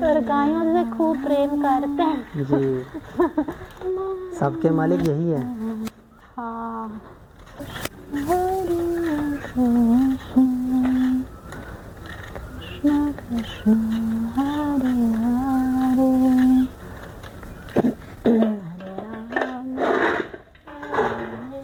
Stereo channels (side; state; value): both; identical; correlation 1.00